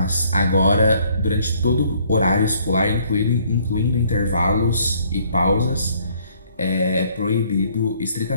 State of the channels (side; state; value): both; inverted; correlation -0.63